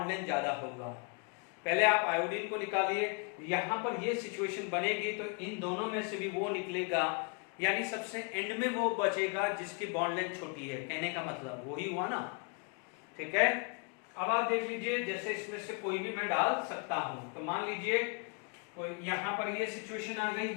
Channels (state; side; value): quieter; right; 35.6 dB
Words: लेंथ ज्यादा होगा। पहले आप आयोडीन को निकालिए, यहां पर ये सिचुएशन बनेगी, तो इन दोनों में से भी वो निकलेगा, यानी सबसे एंड में वो बचेगा जिसकी बॉन्ड लेंथ छोटी है। कहने का मतलब वही हुआ ना? ठीक है, अब आप देख लीजिए, जैसे इसमें से कोई भी मैं डाल सकता हूं। तो मान लीजिए कोई यहां पर ये सिचुएशन आ गई